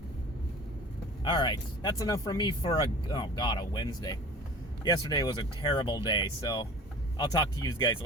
All right, that's enough from me for a Wednesday. Yesterday was a terrible day, so I'll talk to you guys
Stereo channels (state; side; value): normal; both; correlation 0.42